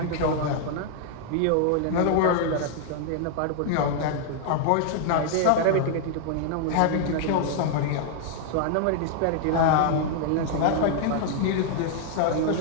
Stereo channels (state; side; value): different; both; correlation -0.01